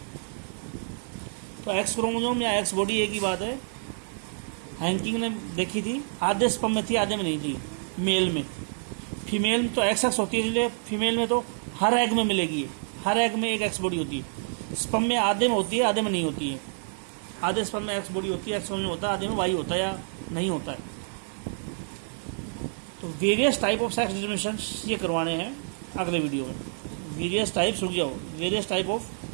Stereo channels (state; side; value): silent; left; 59 dB below the other